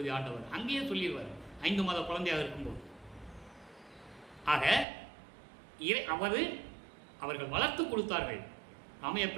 ஆண்டவர். அங்கேயே சொல்லிடுவார் 5 மாத குழந்தையாக இருக்கும்போது. ஆக அவர்கள் வளர்த்து கொடுத்தார்கள். ராமையா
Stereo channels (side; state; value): left; drops out; at 4.9 s